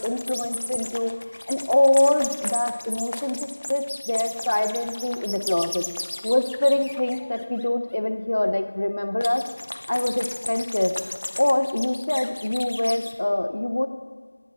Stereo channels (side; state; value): both; inverted; correlation -1.00